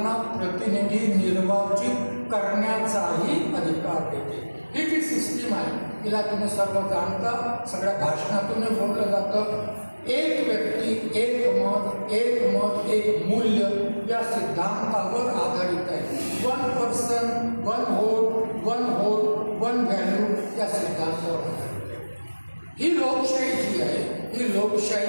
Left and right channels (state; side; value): inverted; both; correlation -1.00